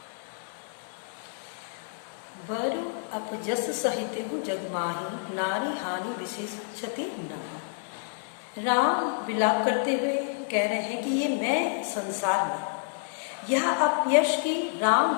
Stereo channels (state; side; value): silent; right; digital silence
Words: बरु अपजस सहित हूँ जगमाही, नारी हानि विशेष क्षति नारी। राम विलाप करते हुए कह रहे हैं कि ये मैं संसार में यह अपयश की राम